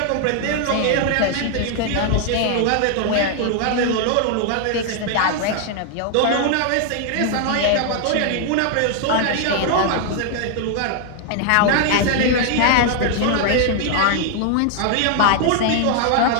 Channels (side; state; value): both; different; correlation 0.00